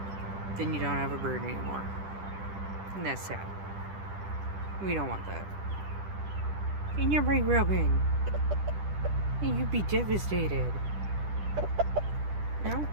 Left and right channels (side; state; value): left; late; 10 ms